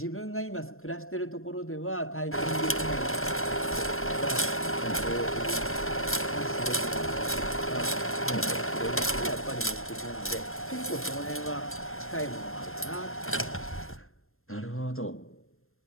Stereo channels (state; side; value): late; right; 0.61 ms